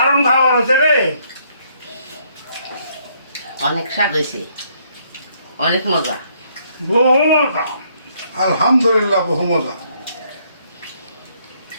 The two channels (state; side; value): inverted; both; correlation -0.69